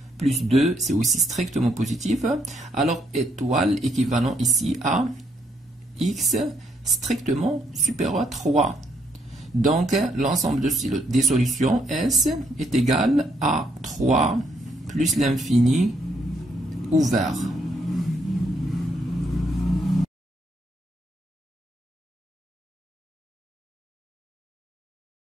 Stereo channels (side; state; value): both; normal; correlation 0.73